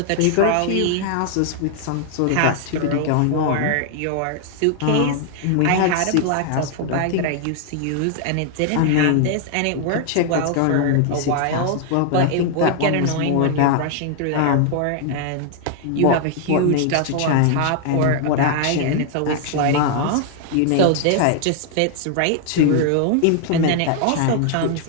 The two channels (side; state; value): both; different; correlation 0.00